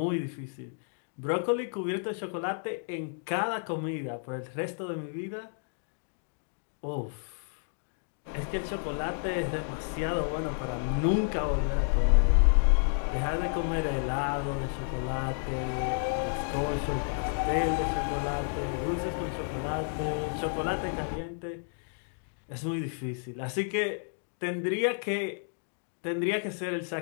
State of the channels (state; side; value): silent; right; digital silence